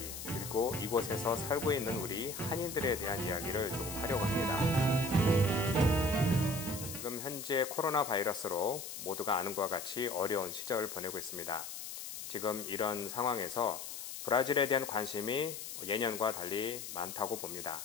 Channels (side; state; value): left; noise; hiss, 8 dB below the sound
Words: 그리고 이곳에서 살고 있는 우리 한인들에 대한 이야기를 조금 하려고 합니다. 지금 현재 코로나 바이러스로 모두가 아는 것과 같이 어려운 시절을 보내고 있습니다. 지금 이런 상황에서 브라질에 대한 관심이 예년과 달리 많다고 봅니다.